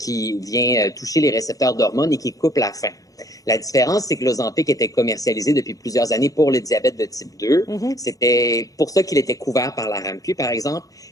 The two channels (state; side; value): late; right; 0.17 ms